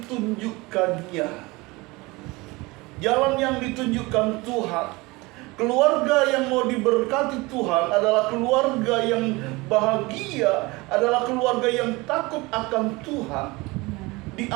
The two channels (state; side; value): quieter; left; 23.3 dB